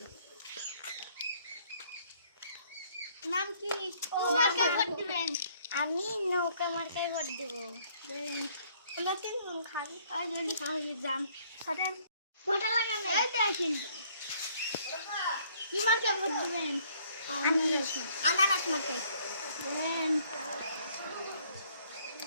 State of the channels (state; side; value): inverted; both; correlation -0.63